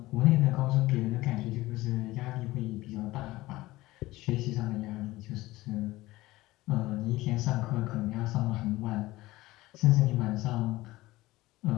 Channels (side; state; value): right; quieter; 18.5 dB